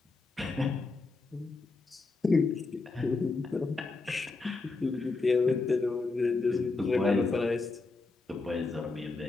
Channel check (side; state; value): right; quieter; 3.7 dB